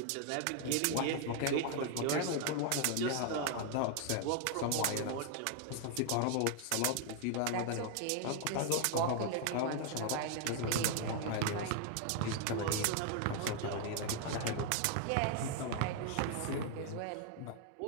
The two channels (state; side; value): different; both; correlation 0.00